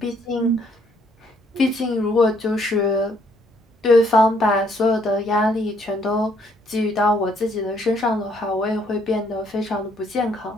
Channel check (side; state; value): both; normal; correlation 0.67